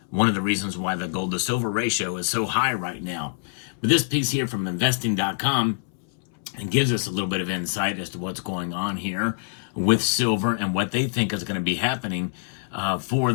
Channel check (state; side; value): silent; right; 62 dB below the other